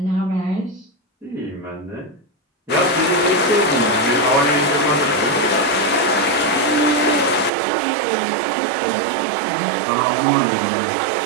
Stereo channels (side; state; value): left; drops out; at 7.5 s